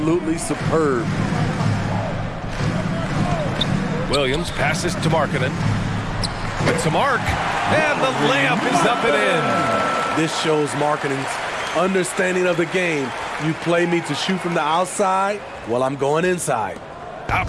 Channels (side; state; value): both; identical; correlation 1.00